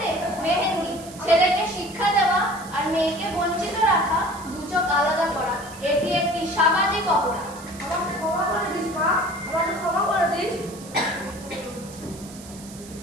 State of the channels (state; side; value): noise; right; hiss, 18 dB below the sound